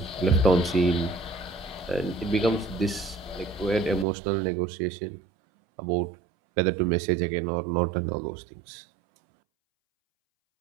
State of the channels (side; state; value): left; drops out; at 4.0 s